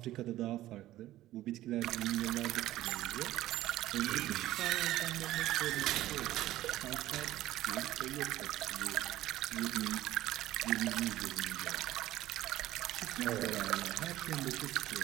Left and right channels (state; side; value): quieter; left; 15.0 dB